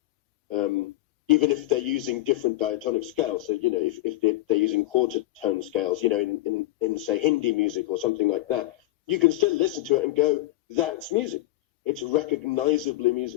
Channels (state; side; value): quieter; right; 17.0 dB